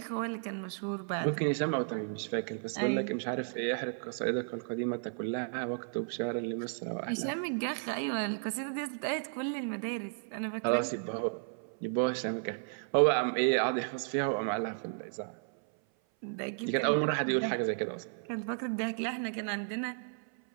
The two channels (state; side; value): silent; left; 55 dB below the other